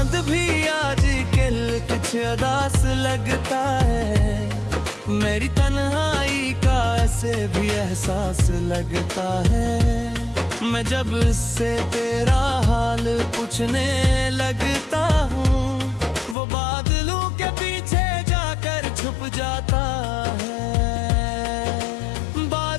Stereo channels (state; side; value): drops out; right; at 16.4 s